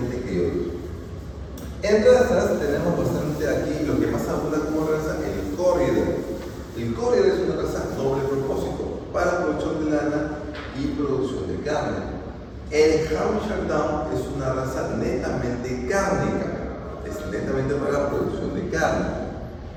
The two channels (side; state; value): both; identical; correlation 1.00